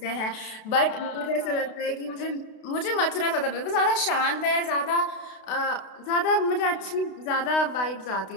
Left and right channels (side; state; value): right; late; 32 ms